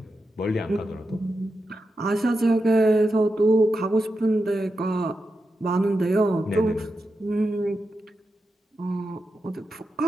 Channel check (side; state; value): both; normal; correlation 0.88